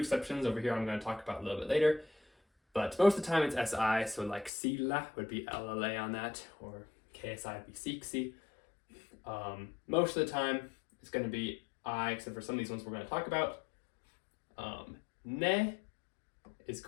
over here I'm going to talk about a little bit later. But most of the time it's SI, so like sillä would be LLA on that, or KSI would be siksi. Most of the time it's going to be I, except for some of these ones we're going to talk about. Ne is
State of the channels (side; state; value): right; drops out; at 4.5 s